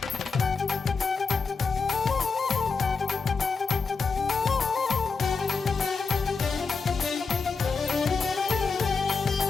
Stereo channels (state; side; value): quieter; right; 4.8 dB